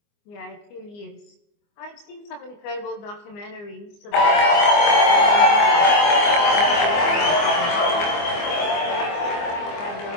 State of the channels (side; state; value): right; late; 24 ms